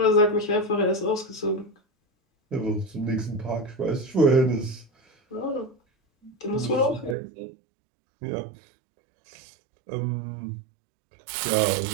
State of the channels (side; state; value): left; drops out; at 7.2 s